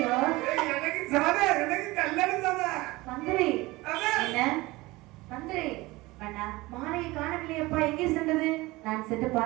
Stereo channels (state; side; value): quieter; left; 21.0 dB